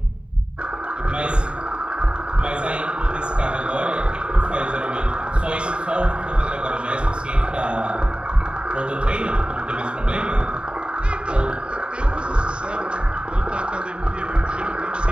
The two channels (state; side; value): late; left; 0.053 ms